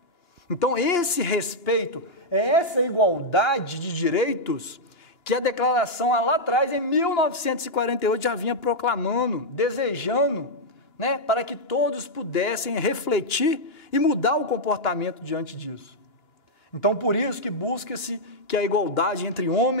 Então, esse respeito, essa igualdade de direitos que a declaração lá atrás, em 1948, já vinha proclamando, desejando, né, para que todos pudessem refletir e mudar o comportamento diante disso. Então, por isso que busca-se que a igualdade entre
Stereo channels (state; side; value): late; right; 2.9 ms